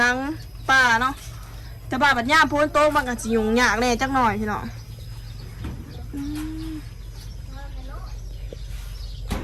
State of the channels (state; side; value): identical; both; correlation 1.00